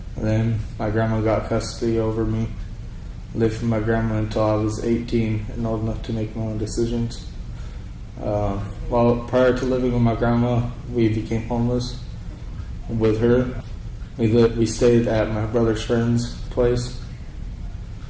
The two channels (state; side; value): identical; both; correlation 1.00